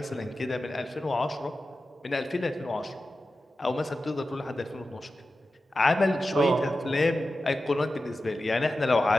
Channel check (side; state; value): both; normal; correlation 0.93